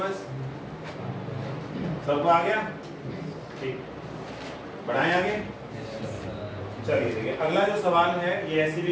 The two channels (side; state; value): both; identical; correlation 1.00